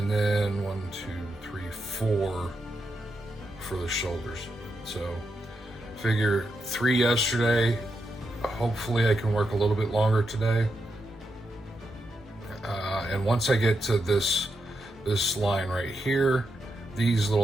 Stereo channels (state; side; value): normal; both; correlation 0.84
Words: then 1, 2, 3, 4 for the shoulders. So figure 3 yesterday. Hopefully I can work a little bit longer today. And once I get to this line right here, these